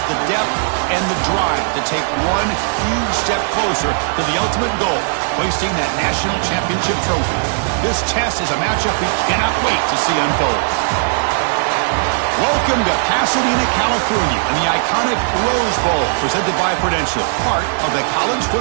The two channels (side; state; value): left; silent; digital silence